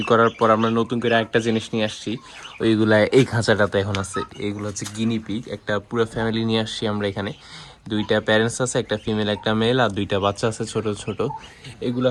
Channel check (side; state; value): both; identical; correlation 1.00